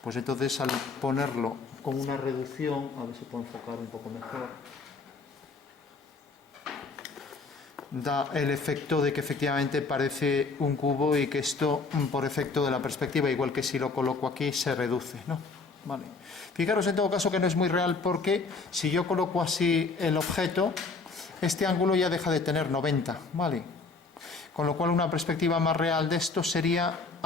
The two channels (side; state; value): right; quieter; 4.1 dB